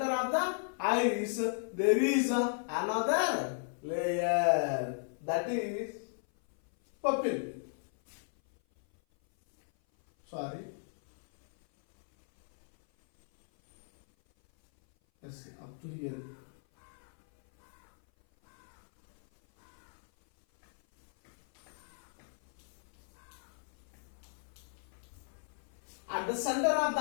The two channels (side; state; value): right; silent; 54 dB below the other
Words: there is another layer, that is pupil. Sorry. Yes, up to here. At the center of the